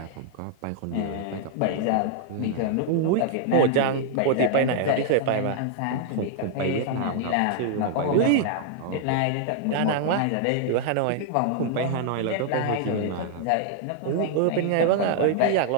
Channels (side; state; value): both; different; correlation -0.01